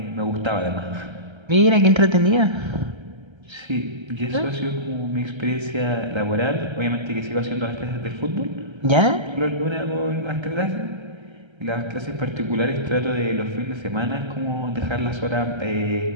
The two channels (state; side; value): late; left; 1.3 ms